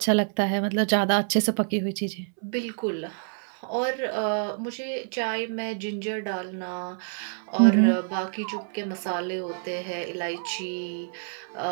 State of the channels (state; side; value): silent; left; 60 dB below the other